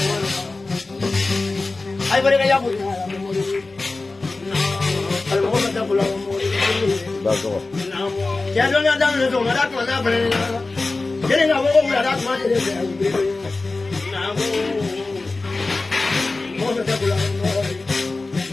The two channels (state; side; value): quieter; right; 3.4 dB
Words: I better get up with you. Ya no le han dado el tomar con la frena. Tienen a poco una edad más de ese. Vamos a hacer